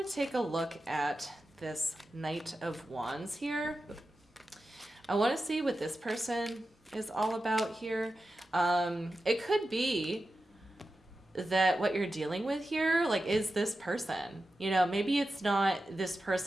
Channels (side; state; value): both; normal; correlation 0.92